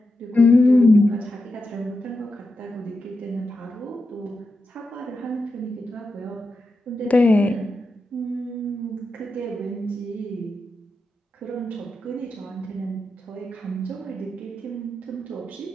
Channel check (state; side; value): normal; both; correlation 0.88